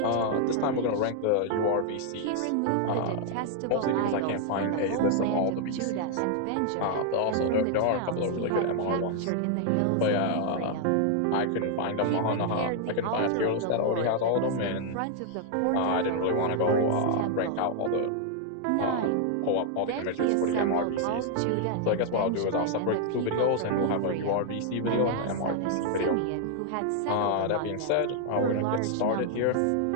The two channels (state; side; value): different; both; correlation 0.00